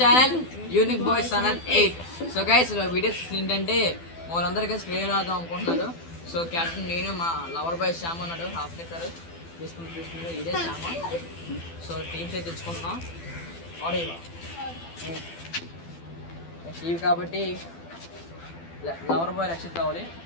unique boys channel 8. So guys, videos ఏంటంటే వాళ్ళందరికీ స్క్రీన్ ఆడదాం అనుకుంటున్నారు. సో క్యాప్టెన్ నేను, మా లవర్ బాయ్ శ్యామ్ అన్నాడు, హాఫ్ లిక్కర్ తీసుకుంటే ఇదే శ్యామ. సో టీమ్స్ అయితే తెచ్చుకుంటున్నాం. ఆడేవా ఇవి కాబట్టి లవర్ బాయ్ రక్షిత్ కావాలి,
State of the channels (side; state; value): right; late; 12 ms